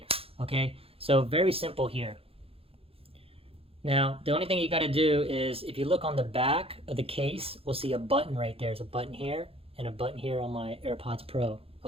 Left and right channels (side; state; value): left; late; 0.27 ms